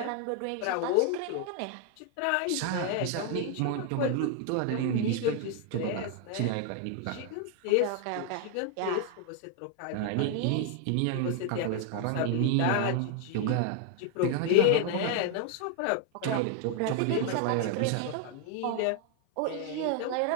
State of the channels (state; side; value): different; both; correlation 0.00